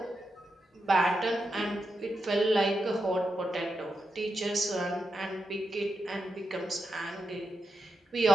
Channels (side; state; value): both; normal; correlation 0.87